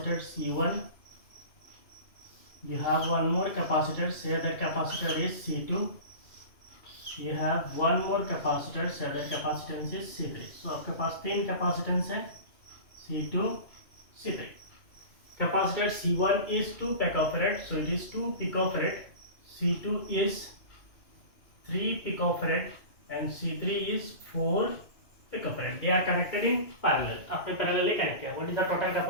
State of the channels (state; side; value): late; right; 2.3 ms